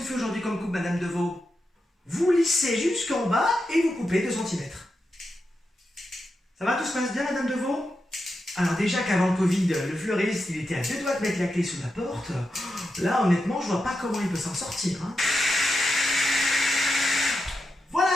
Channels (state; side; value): normal; both; correlation 0.87